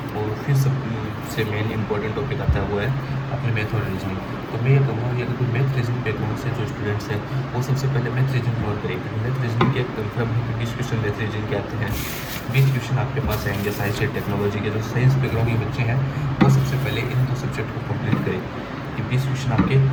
और फिर सबसे मेन इंपॉर्टेंट टॉपिक आता है वो है अपने मैथ और रीजनिंग। तो मैं ये कहूँगा कि अगर कोई मैथ रीजनिंग बैकग्राउंड से जो स्टूडेंट्स हैं वो सबसे पहले मैथ रीजनिंग कवर करेंगे। मैथ रीजनिंग के कंफर्म 20 क्वेश्चन मैथ रीजनिंग के आते हैं, 20 क्वेश्चन आपके पास आएंगे। साइंस एंड टेक्नोलॉजी के जो साइंस बैकग्राउंड के बच्चे हैं वो सबसे पहले इन दो सब्जेक्ट को कंप्लीट करें। कि 20 क्वेश्चन आपके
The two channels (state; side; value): identical; both; correlation 1.00